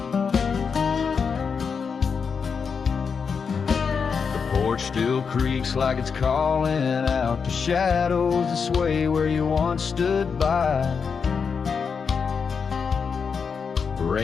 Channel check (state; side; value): quieter; right; 5.9 dB